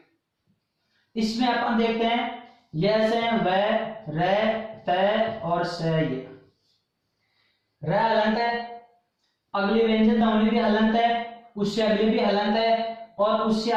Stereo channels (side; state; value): both; identical; correlation 1.00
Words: इसमें अपन देखते हैं यह से वह रे तय और से, ये रे हलंत है, अगली व्यंजन ध्वनि भी हलंत है, उससे अगली भी हलंत है, और उससे